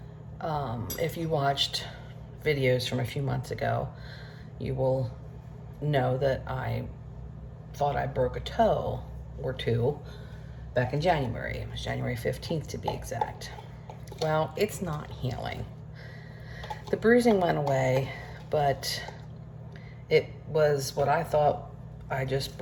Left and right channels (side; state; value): both; identical; correlation 1.00